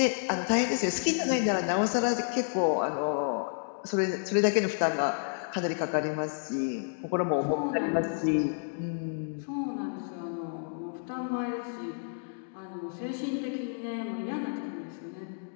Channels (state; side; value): silent; right; digital silence